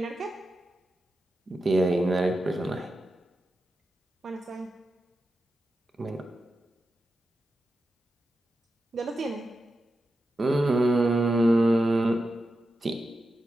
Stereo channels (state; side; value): normal; both; correlation 0.90